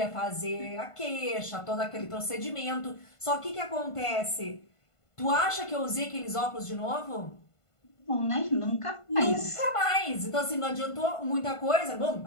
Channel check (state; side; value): late; right; 1.5 ms